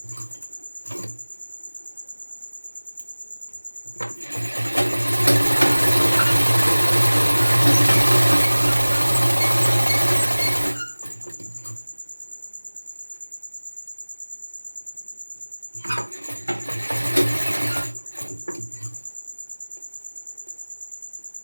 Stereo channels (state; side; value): inverted; both; correlation -1.00